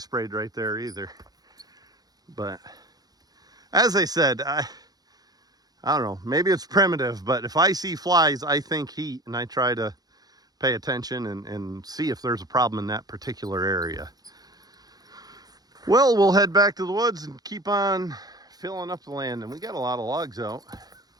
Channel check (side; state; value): left; late; 0.19 ms